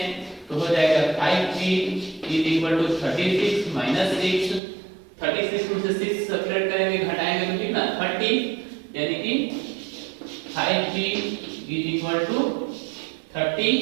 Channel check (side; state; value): left; drops out; at 4.6 s